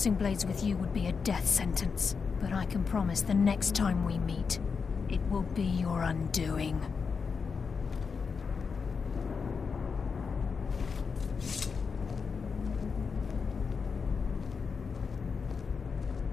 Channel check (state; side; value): quieter; right; 5.5 dB